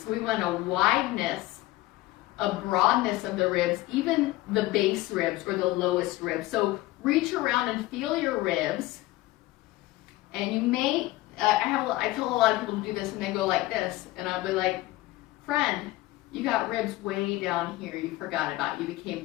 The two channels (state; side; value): quieter; right; 18.0 dB